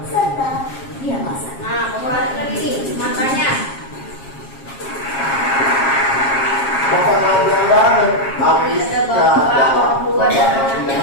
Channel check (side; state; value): right; late; 7.4 ms